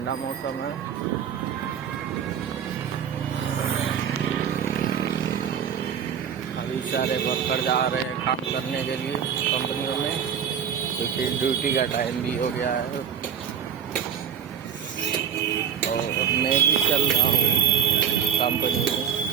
मौसम है। अभी सारे वर्कर जा रहे हैं काम करने के लिए कंपनियों में, क्योंकि ड्यूटी का टाइम भी हो गया है। और मैं भी चल रहा हूँ कंपनी में,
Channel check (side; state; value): left; quieter; 7.8 dB